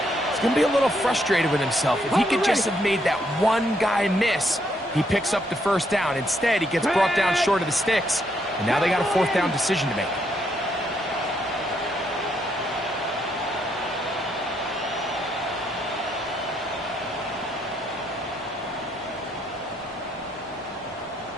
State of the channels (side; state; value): both; normal; correlation 0.74